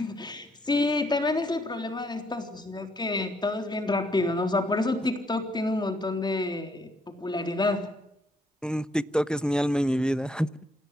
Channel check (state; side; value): normal; both; correlation 0.71